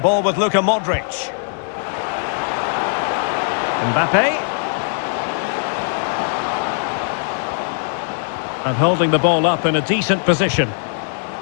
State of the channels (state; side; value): silent; right; 61 dB below the other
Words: ball with Luka Modric. Mbappé. And holding the ball up in a decent position.